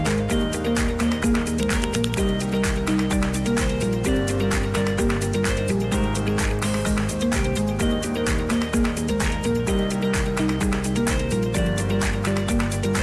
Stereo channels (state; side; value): identical; both; correlation 1.00